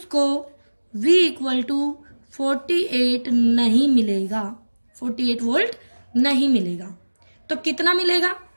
V इक्वल टू 48 नहीं मिलेगा, 48 वोल्ट नहीं मिलेगा। तो कितना मिलेगा,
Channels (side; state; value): both; inverted; correlation -1.00